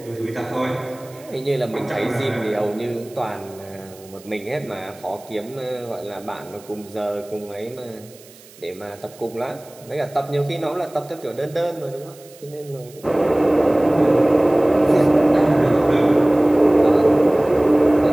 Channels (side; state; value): right; noise; hiss, 24 dB below the sound